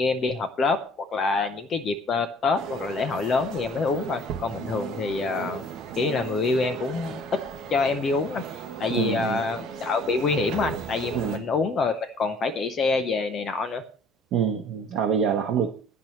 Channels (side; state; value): both; normal; correlation 0.53